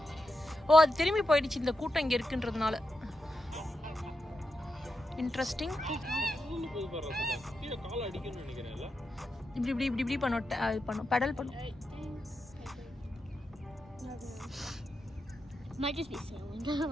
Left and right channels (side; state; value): both; normal; correlation 0.87